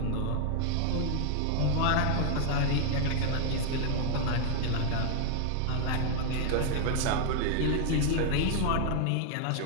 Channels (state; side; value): different; both; correlation 0.00